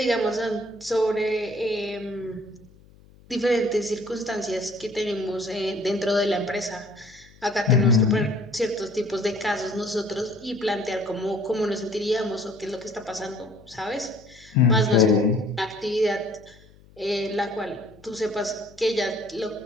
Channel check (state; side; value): noise; left; hum, 26 dB below the sound